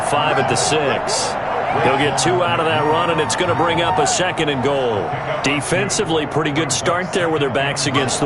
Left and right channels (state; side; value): identical; both; correlation 1.00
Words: 5 at the 6. He'll get 2 out of that run, and it's going to bring up a 2nd and goal. Defensively, pretty good start there with their backs against the